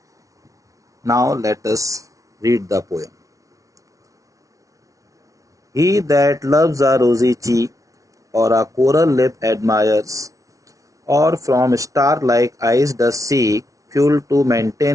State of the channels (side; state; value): left; late; 0.17 ms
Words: Now let us read the poem. He that loves a rosy cheek or a coral lip admires, or from star-like eyes does seek fuel to